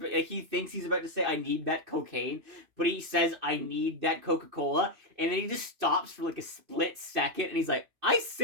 thinks he's about to say, I need that cocaine. But he says, I need that Coca-Cola. And then he just stops for like a split second. And he's like, I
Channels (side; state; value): left; late; 2.6 ms